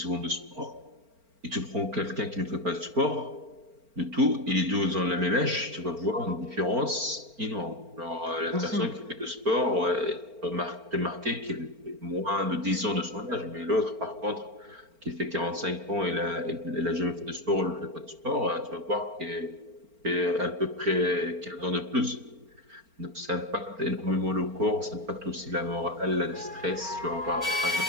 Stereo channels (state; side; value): late; left; 4.4 ms